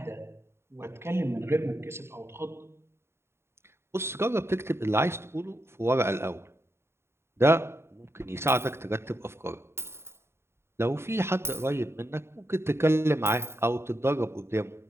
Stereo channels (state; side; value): late; left; 0.12 ms